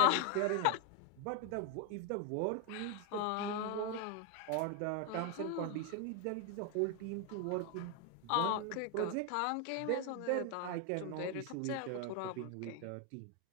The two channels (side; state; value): both; different; correlation 0.01